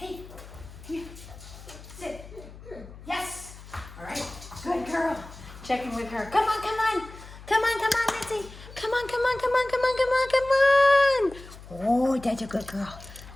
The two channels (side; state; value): left; noise; hum, 17 dB below the sound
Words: Come here. Sit. Yes. All right. Good girl. Check in with her. Come on, come on. Come on, come on, Mitzi. Come on, come on, come on, come on, come on, come on. Oh, that's a good girl.